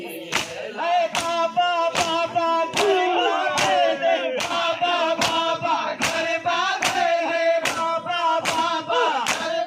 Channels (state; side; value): identical; both; correlation 1.00